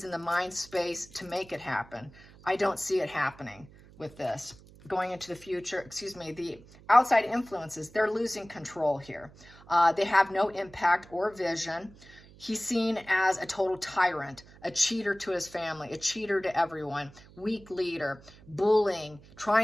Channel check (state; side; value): noise; right; hum, 23 dB below the sound